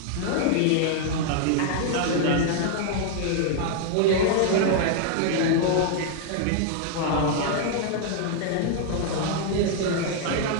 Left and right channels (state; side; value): different; both; correlation 0.00